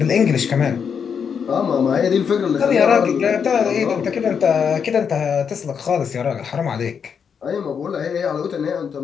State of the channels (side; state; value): right; quieter; 6.9 dB